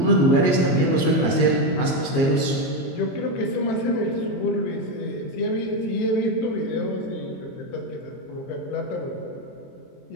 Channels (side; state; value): right; late; 22 ms